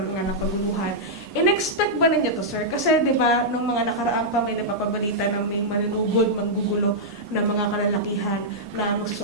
nga ng pagbubuhan. In-expect ba ninyo to sir? Kasi di ba, nung mga nakaraan pa may napapabalita na may malinugod, maggugulo ng mga kalalakihan na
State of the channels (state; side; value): normal; both; correlation -0.08